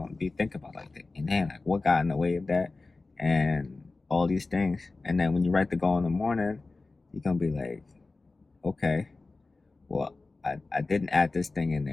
to be thinking about like, man, like, what got in the way of that? And all these things. And then when you write the goal in the morning, you're going to be like, okay, well, I didn't add this thing in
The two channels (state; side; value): quieter; right; 3.6 dB